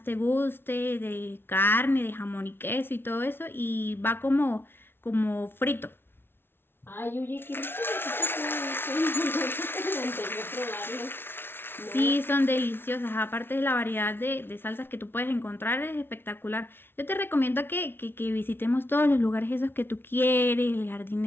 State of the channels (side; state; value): right; late; 0.11 ms